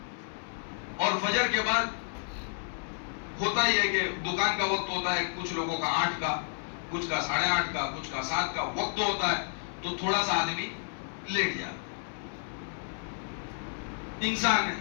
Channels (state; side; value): silent; right; digital silence